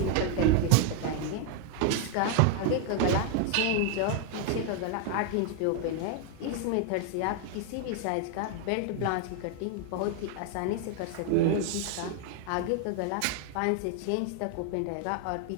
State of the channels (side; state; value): both; different; correlation 0.01